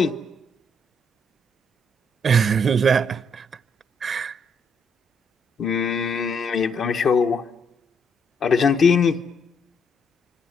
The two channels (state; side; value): normal; both; correlation 0.73